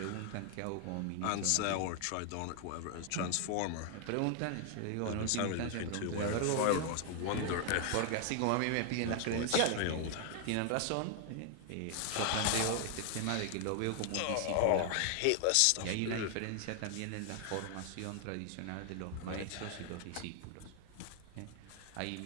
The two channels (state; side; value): different; both; correlation 0.00